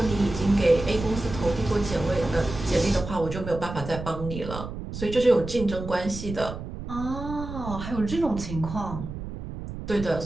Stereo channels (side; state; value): right; noise; rumble, 9 dB below the sound